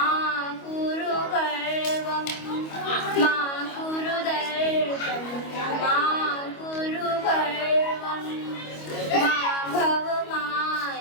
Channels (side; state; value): right; late; 25 ms